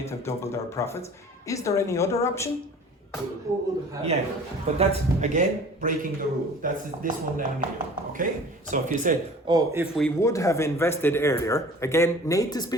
have doubled our profits. Is there any other option? Yeah, but that's, again, breaking the rule. That's this one down here, okay? So if you said, oh, if we would have invested earlier, again, native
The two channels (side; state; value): both; normal; correlation 0.45